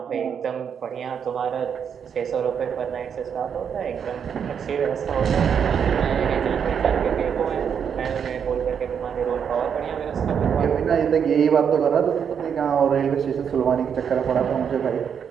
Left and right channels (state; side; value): quieter; left; 7.5 dB